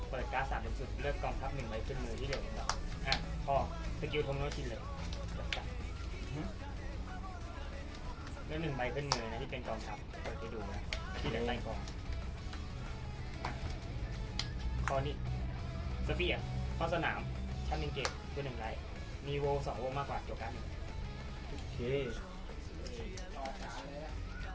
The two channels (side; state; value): both; identical; correlation 1.00